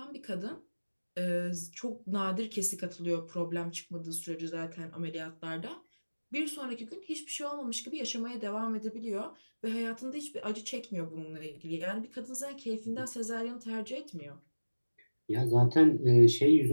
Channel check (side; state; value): both; inverted; correlation -1.00